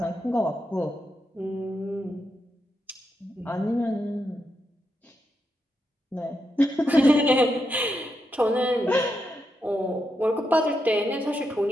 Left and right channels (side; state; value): both; normal; correlation 0.84